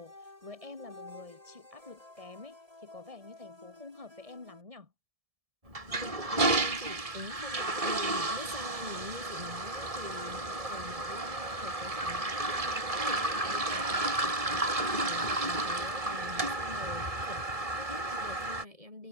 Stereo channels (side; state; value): left; late; 1.7 ms